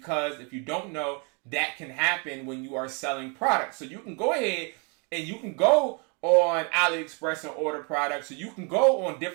if you don't know, that can happen when you are selling products. So you can go ahead and you can go on AliExpress and order products. So you can go on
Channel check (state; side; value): quieter; left; 34.8 dB